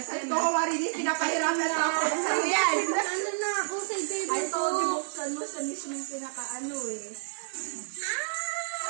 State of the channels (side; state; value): left; silent; digital silence